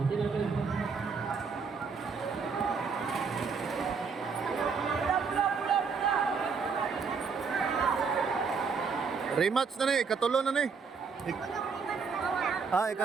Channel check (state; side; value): quieter; left; 5.4 dB